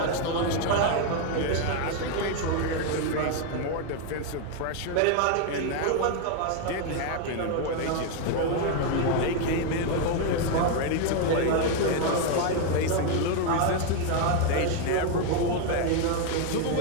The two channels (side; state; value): both; different; correlation 0.01